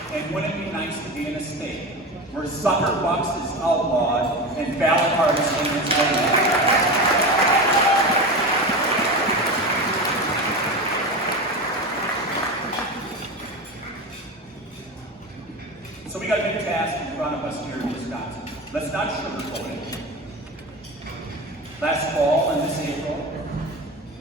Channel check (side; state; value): both; normal; correlation 0.25